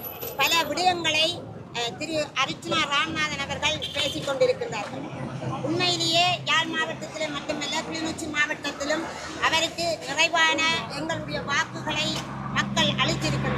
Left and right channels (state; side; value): identical; both; correlation 1.00